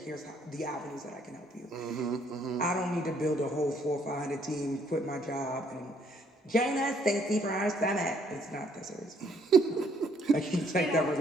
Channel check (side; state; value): both; normal; correlation 0.66